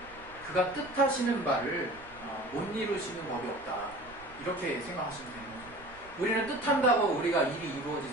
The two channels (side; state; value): right; noise; rumble, 22 dB below the sound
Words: 그가 뜻하시는 바를 못 이루시는 법이 없다. 이렇게 생각하시면 되는 거죠. 우리는 뜻한다고 우리가 일이